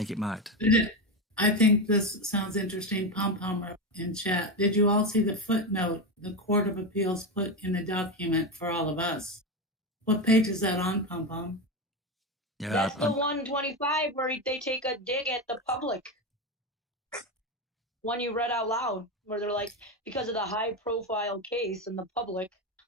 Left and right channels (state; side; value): normal; both; correlation 0.15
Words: I think this sounds interesting. Pom-Pom in chat. Did you all see the footnote the Court of Appeals put in the document for all of us? What page is that on, Pom-Pom? Yeah, that's the 125 where they take a dig at the public. One you read out loud, where they're like, because of the high-profile case in the public.